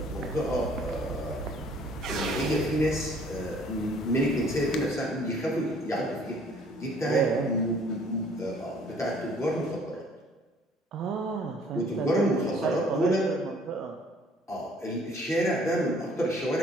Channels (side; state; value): both; normal; correlation 0.58